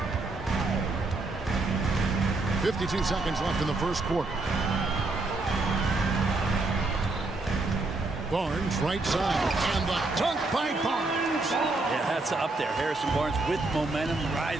52 seconds left in the first quarter. Barnes right side, and the dunk by Barnes. Yeah, that's up there. Harrison Barnes with momentum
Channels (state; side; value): quieter; left; 3.2 dB